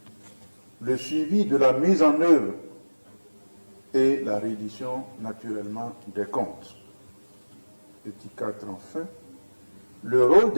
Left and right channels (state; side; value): inverted; both; correlation -1.00